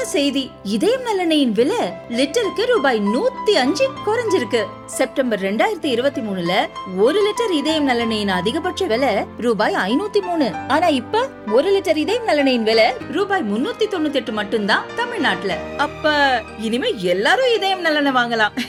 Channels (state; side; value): identical; both; correlation 1.00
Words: செய்தி. இதயம் நலனையின் விலை லிட்டருக்கு ரூபாய் 105 குறைஞ்சிருக்கு. செப்டம்பர் 2023ல 1 லிட்டர் இதயம் நலனையின் அதிகபட்ச விலை ரூபாய் 503. ஆனா இப்ப 1 லிட்டர் இதயம் நலனையின் விலை ரூபாய் 398 மட்டும்தான் தமிழ்நாட்டுல. அப்ப இனிமே எல்லாரும் இதயம் நலனை வாங்கலாம்